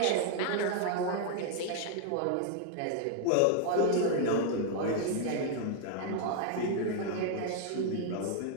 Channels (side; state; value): both; different; correlation 0.00